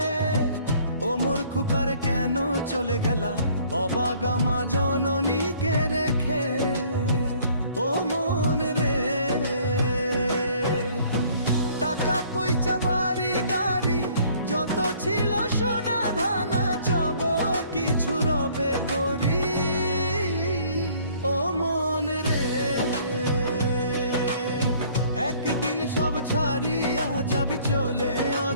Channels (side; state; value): both; inverted; correlation -0.58